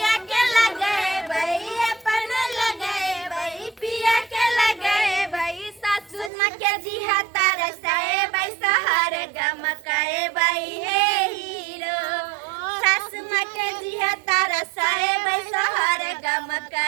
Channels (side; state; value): left; drops out; at 6.3 s